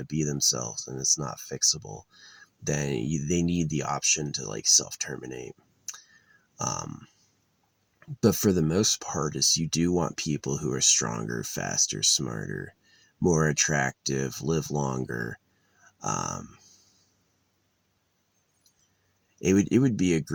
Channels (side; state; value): both; identical; correlation 1.00